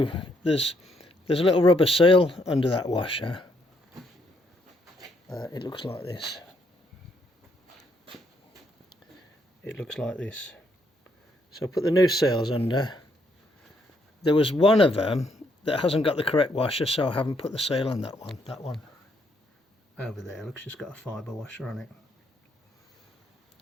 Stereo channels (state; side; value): normal; both; correlation 0.73